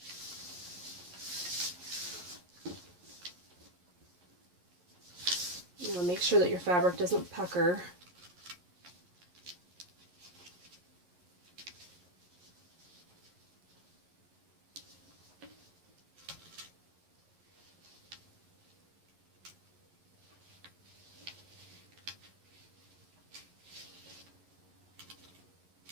sure that your fabric doesn't pucker.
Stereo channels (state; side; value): late; left; 11 ms